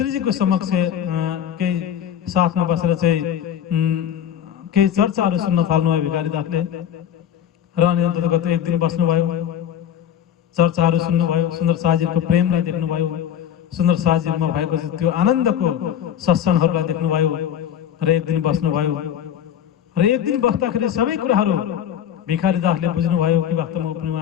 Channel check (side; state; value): right; quieter; 9.6 dB